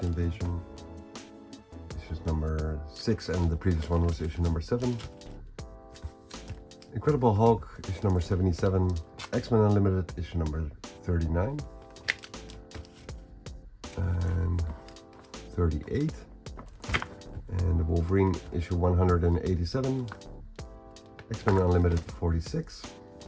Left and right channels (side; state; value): both; identical; correlation 1.00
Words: Invasion. Issue number 6, and the previous one was issue number 7. Incredible Hulk, issue number 77. X-Men Unlimited, issue number 39. And 38. And the Wolverine, issue 187. X-Men Unlimited 46,